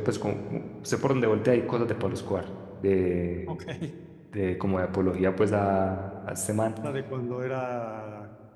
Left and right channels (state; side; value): identical; both; correlation 1.00